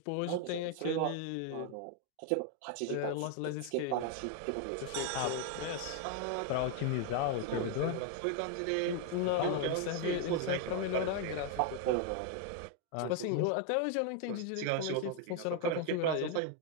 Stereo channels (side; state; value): both; different; correlation 0.01